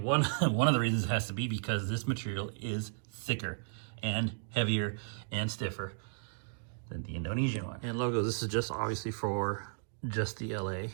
one of the reasons has to be because this material is thicker and heavier and stiffer than the Indonesian one. And logos, this is just obviously for just the LA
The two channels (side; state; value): left; silent; digital silence